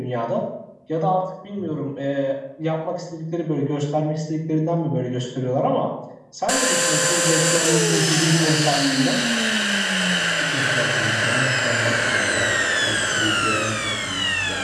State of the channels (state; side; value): identical; both; correlation 1.00